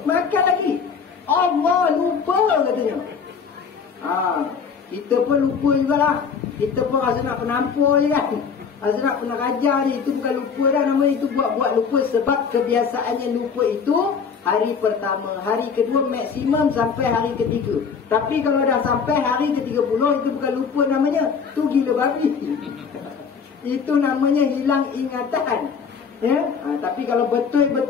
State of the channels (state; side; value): quieter; right; 6.1 dB